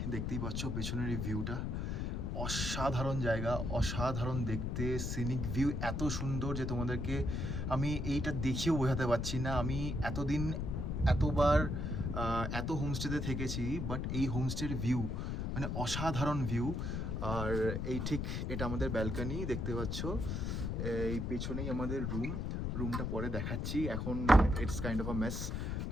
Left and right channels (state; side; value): noise; left; rumble, 1 dB below the sound